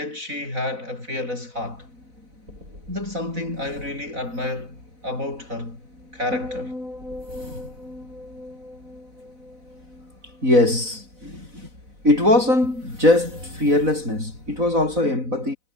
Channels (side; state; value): left; late; 4.0 ms